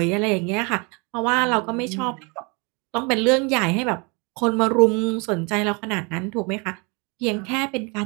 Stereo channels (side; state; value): left; quieter; 30.4 dB